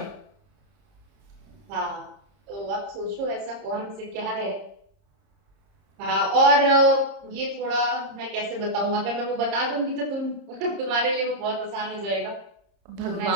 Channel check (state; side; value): late; left; 30 ms